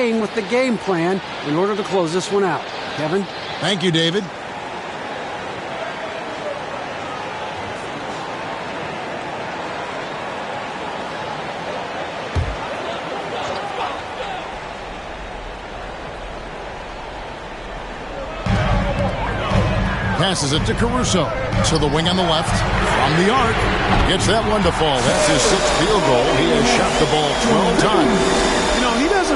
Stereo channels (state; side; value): identical; both; correlation 1.00